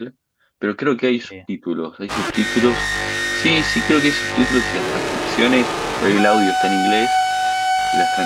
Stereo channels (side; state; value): both; identical; correlation 1.00